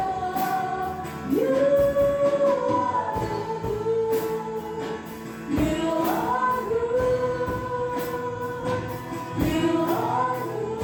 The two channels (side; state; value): both; identical; correlation 1.00